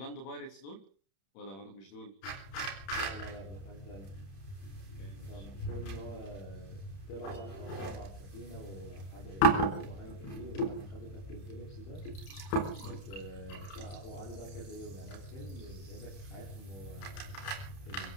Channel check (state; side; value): late; right; 31 ms